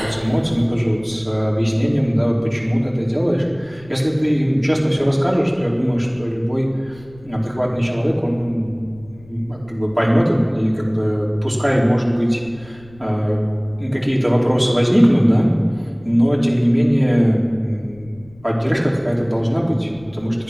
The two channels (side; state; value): left; noise; rumble, 23 dB below the sound